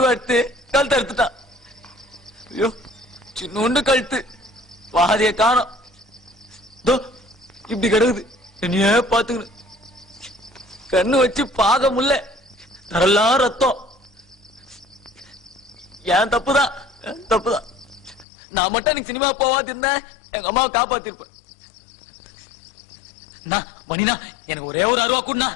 கழுத்து அறுத்துட்டான். ஐயோ, சின்ன கழுத்து, பாதிய காணோம். இப்படி கிடக்குது. என்னையே பாத்துக்கணும். கண்ணு வச்சு பாக முடியல. தரெல்லாம் ரத்தம். ஏன் தப்புதான், தப்புதான். நான் மட்டும் எனக்கு சினிமா போவாது இருந்தேன், எங்க அம்மாவை காப்பாத்திருப்பேன். மணினா, எனக்கு ஒரே ஒரு அருவா கூடனா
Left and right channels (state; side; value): drops out; right; at 18.2 s